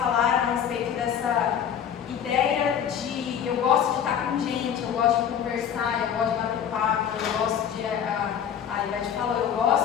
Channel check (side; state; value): right; quieter; 8.7 dB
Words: a respeito dessa ideia de eu gosto de estar com gente, eu gosto de conversar, eu gosto de bater papo, eu gosto de. A Ivete falou, eu